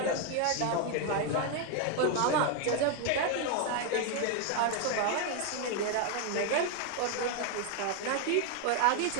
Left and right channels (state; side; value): different; both; correlation 0.01